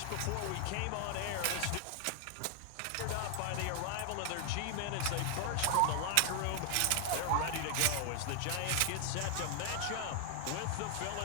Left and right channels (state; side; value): different; both; correlation 0.00